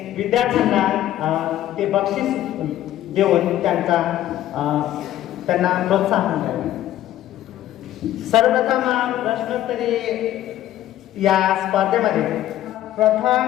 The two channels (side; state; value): right; quieter; 13.1 dB